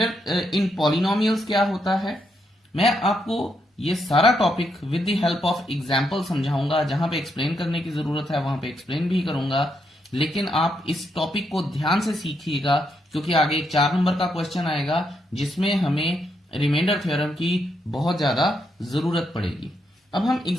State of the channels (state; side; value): normal; both; correlation 0.79